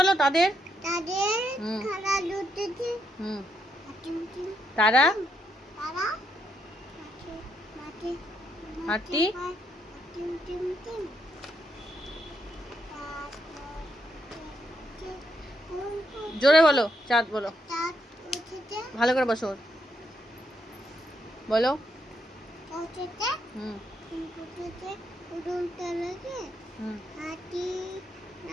তাদের হুম, তারা হাতি। জোরে বলো। চাঁদ বলো, ভালো করে বসো। বলো। হুম হুম, হাতি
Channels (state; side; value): normal; both; correlation 0.77